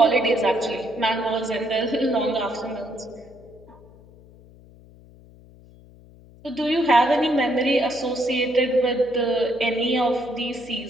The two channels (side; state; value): left; noise; hum, 24 dB below the sound